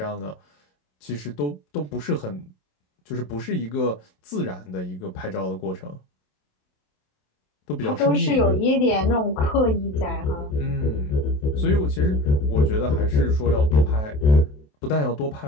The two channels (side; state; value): right; late; 27 ms